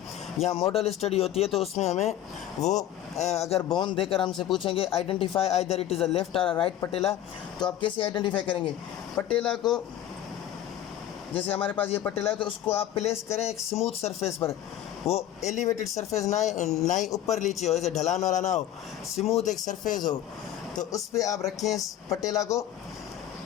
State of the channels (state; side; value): quieter; right; 11.7 dB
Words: या मॉडल स्टडी होती है तो उसमें हमें वो अगर बोन देकर हमसे पूछेंगे identify either it is a left और राइट पटेला, तो आप कैसे आइडेंटिफाई करेंगे पटेला को। जैसे हमारे पास ये पटेला है तो उसको आप प्लेस करें एक स्मूथ सरफेस पर, वो एलिवेटेड सरफेस ना ही ऊपर नीचे हो, ऐसे ढलान वाला ना हो, स्मूथ एक सरफेस हो, तो उस पर आप रखें इस पटेला को।